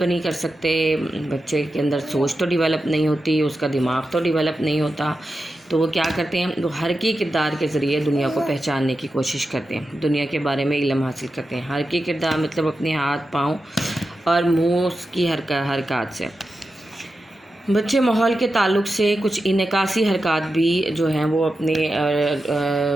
नहीं कर सकते, बच्चे के अंदर सोच तो डेवलप नहीं होती, उसका दिमाग तो डेवलप नहीं होता। तो वो क्या करते हैं, वो हरकी किरदार के ज़रिए दुनिया को पहचानने की कोशिश करते हैं, दुनिया के बारे में इल्म हासिल करते हैं। हरकी किरदार मतलब अपने हाथ पाँव और मुँह की हरकत से। बच्चे माहौल के ताल्लुक़ से कुछ इनकासी हरकत भी जो हैं वो अपने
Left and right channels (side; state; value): both; normal; correlation 0.91